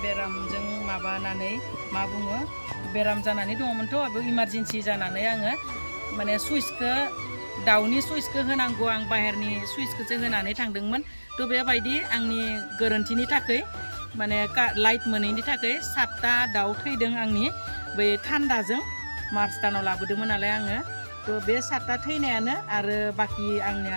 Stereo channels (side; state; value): both; inverted; correlation -1.00